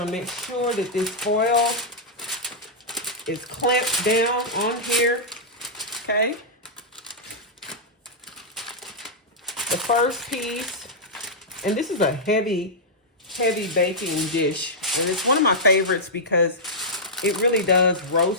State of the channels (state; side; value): normal; both; correlation -0.09